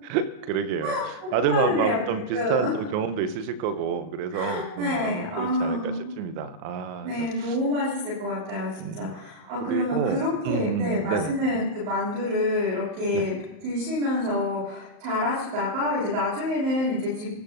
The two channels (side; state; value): left; late; 38 ms